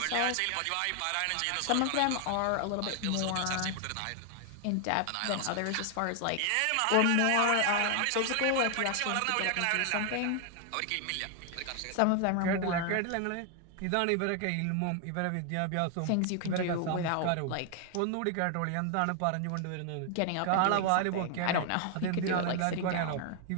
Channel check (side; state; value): both; different; correlation 0.00